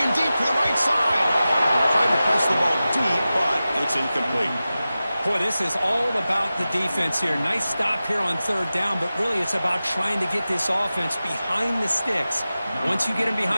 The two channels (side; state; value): both; inverted; correlation -0.95